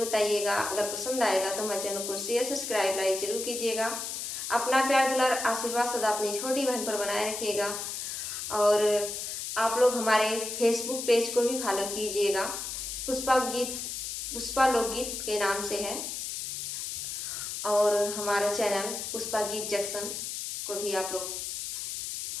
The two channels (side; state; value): left; noise; hiss, 5 dB below the sound